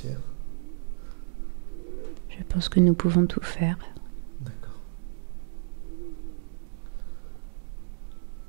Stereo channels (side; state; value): left; silent; digital silence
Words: Je pense que nous pouvons tout faire. D'accord.